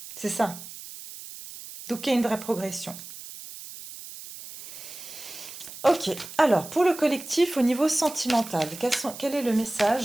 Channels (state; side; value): noise; right; hiss, 13 dB below the sound